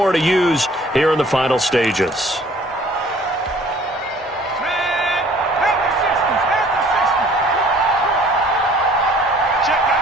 to use here in the final stages.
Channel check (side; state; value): both; normal; correlation 0.54